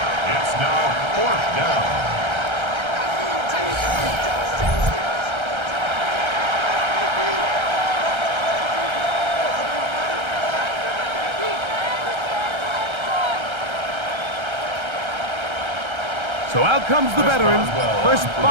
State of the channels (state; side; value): late; left; 1.3 ms